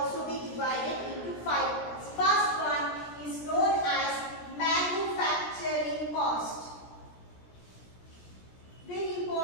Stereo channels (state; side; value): late; right; 17 ms